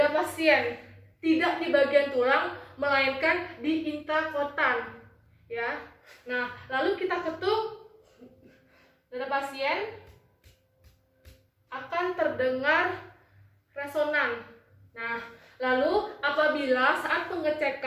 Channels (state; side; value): identical; both; correlation 1.00